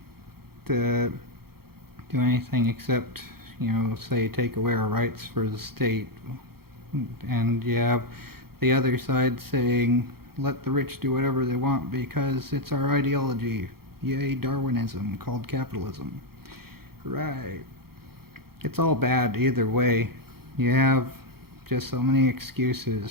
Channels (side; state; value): left; late; 0.94 ms